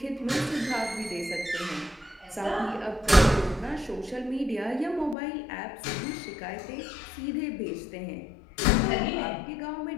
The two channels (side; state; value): right; drops out; at 5.2 s